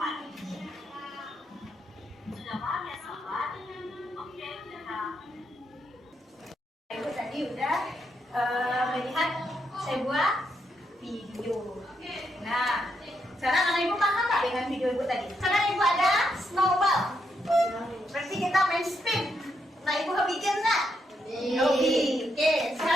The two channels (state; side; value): normal; both; correlation 0.80